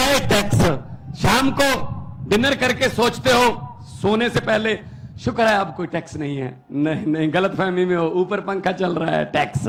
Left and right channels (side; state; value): both; identical; correlation 1.00